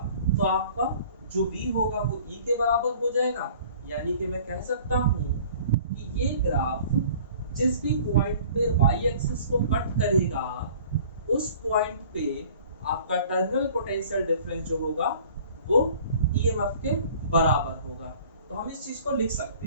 तो आपका जो V होगा वो E के बराबर हो जाएगा। यानी कि मैं कह सकता हूँ कि ये ग्राफ जिस भी पॉइंट पे y एक्सिस को कट करेगा उस पॉइंट पे आपका टर्मिनल पोटेंशियल डिफरेंस जो होगा वो EMF के बराबर होगा। तो हम इस चीज को लिख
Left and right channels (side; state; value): both; inverted; correlation -0.49